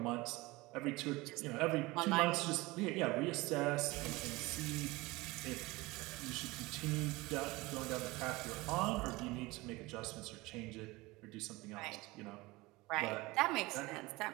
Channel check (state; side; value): quieter; left; 21.8 dB